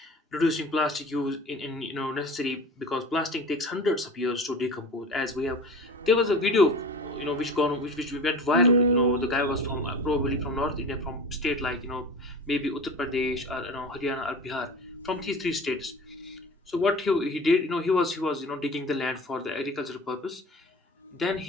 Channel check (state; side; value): normal; both; correlation 0.36